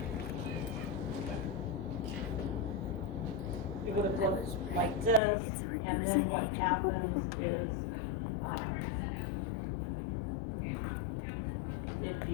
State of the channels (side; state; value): right; drops out; at 5.2 s